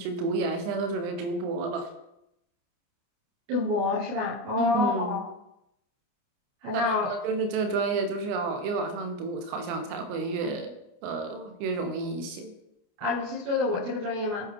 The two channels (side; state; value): left; late; 29 ms